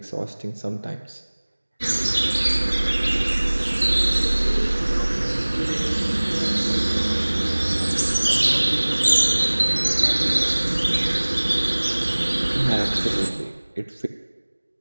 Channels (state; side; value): inverted; both; correlation -1.00